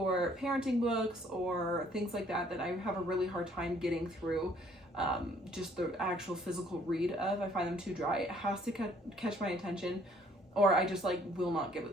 parenting books or things like that I have a really hard time getting through just the actual physical read of. I find them too dry. It has to catch my attention, or I just like will not give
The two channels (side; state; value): both; normal; correlation 0.61